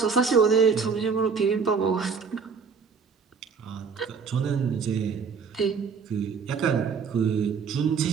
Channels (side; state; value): left; quieter; 5.8 dB